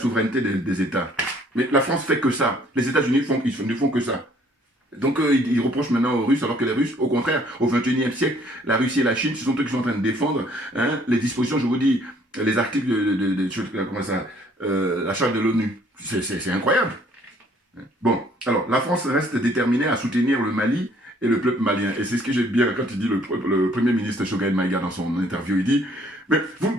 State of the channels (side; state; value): both; normal; correlation 0.61